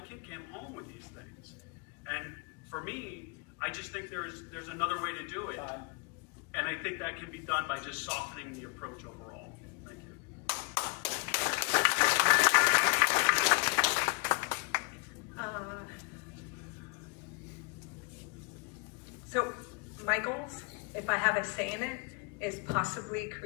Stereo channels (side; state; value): right; quieter; 30.7 dB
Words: came home with these things. And for me, I just think there's another way to do it. And I think that can be done by just softening the approach overall. Thank you. So my goals if I have a say in it, is possibly